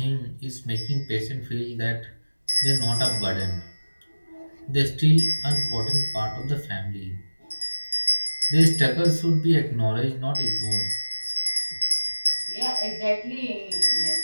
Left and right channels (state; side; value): inverted; both; correlation -1.00